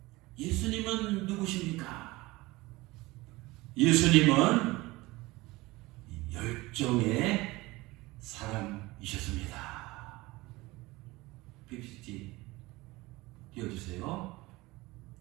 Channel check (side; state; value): left; quieter; 20.9 dB